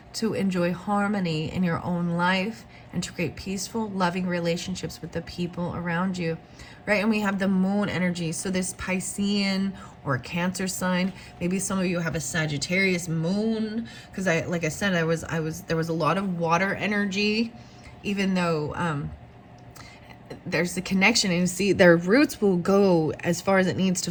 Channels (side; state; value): both; identical; correlation 1.00